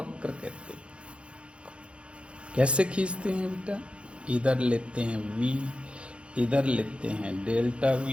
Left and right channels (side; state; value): left; late; 0.058 ms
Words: कहते हैं। कैसे खींचते हैं बेटा, इधर लेते हैं V, इधर लेते हैं डेल्टा